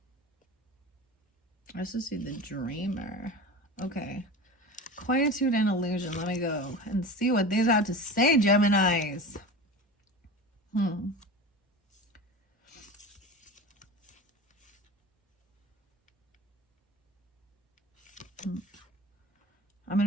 I also see the dreamer. Okay. Quietude and illusion. Let me go and see what these have to say, Geminis. I'm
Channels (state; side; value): normal; both; correlation 0.32